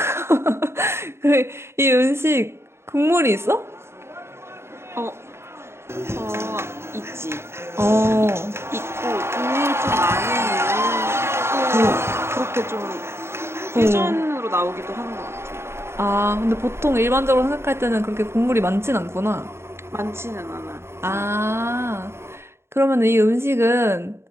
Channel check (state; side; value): late; left; 0.12 ms